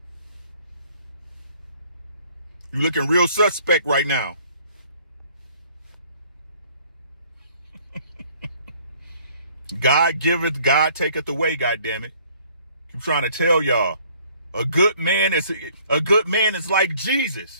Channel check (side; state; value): both; inverted; correlation -0.58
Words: You looking real suspect right now. God giveth, God taketh away, goddammit. I'm trying to tell y'all. A good man is like